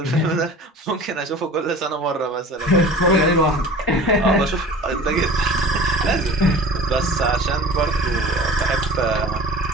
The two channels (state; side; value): normal; both; correlation 0.41